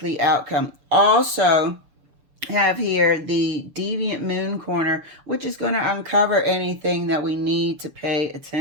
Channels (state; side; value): late; left; 6.9 ms